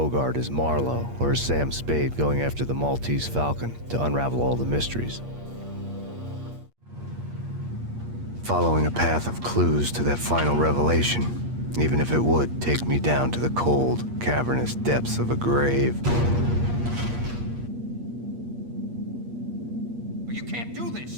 as Marlowe or as Sam Spade going after the Maltese Falcon to unravel all the mysteries. Following a path of clues to that final revelation, even if it would take me down to the cold, cavernous depths of a grave. You can't do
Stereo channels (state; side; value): late; left; 8.5 ms